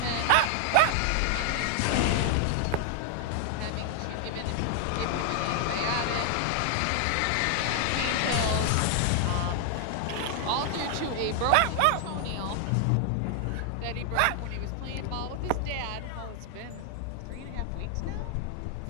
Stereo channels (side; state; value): both; different; correlation 0.00